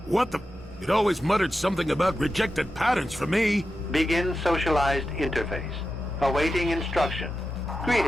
What the... It always muttered something about rejected patterns for me. Begin socialized interface. Awaiting instruction.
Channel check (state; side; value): normal; both; correlation 0.90